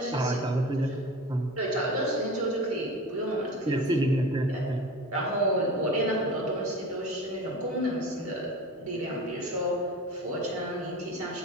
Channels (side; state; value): both; normal; correlation 0.34